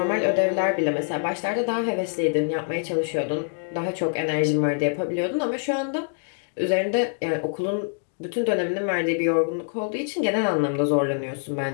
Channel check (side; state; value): right; silent; digital silence